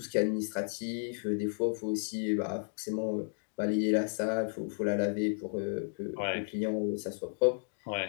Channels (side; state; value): right; silent; digital silence